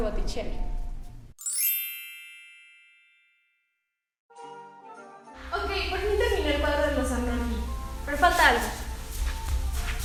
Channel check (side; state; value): both; identical; correlation 1.00